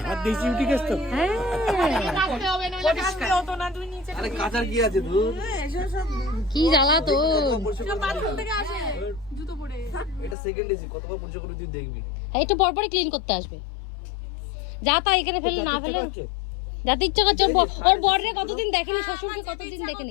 হাত দিয়েছি উঠে গেছ তো। হ্যাঁ, কাটতে হবে নইলে কাটতে হতো না, তুই নিচে আরে কাঁচার কি আছে দূর? এসব সব কি জ্বালা তো। বাথরুম থেকে আসে জুতো পরে। এটা সেকেন্ড এসি, কতবার পরিষ্কার করে তুই দেখবি। একটু পরপরই ক্লিন করতে আসবে। যা তা এখানে ফেলে না ফেলে যাতে ইচ্ছা করছে। ওর বরের কতদিন দেখেনি, শ্বশুরকে কতদিন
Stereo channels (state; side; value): drops out; right; at 10.4 s